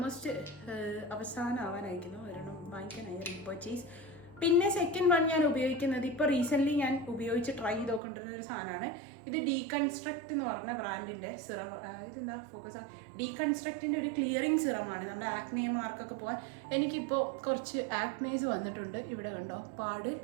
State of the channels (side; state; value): left; drops out; at 8.0 s